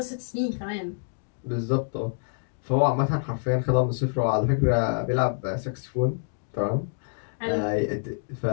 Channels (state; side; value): silent; right; digital silence